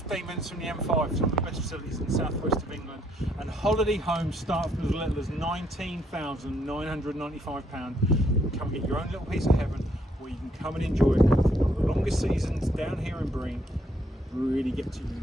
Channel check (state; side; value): normal; both; correlation 0.70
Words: minutes from the M5, some of the best facilities in the southwest of England, and holiday homes start from as little as £19,995. You can come get your own little piece of heaven, or you can come and enjoy it. One of the longest seasons down here in Breen, really get to